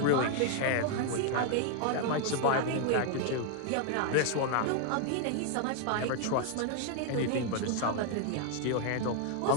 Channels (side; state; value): both; different; correlation 0.00